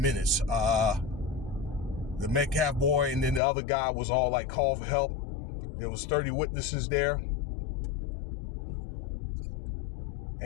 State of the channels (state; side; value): drops out; right; at 3.4 s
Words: The Metcalf boy and then the other guy was all like, call for help. There was 30 witnesses there.